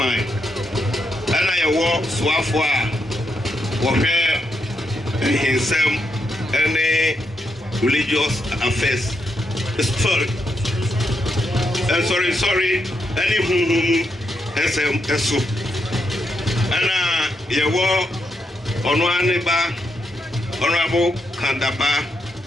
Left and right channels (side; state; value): both; normal; correlation 0.81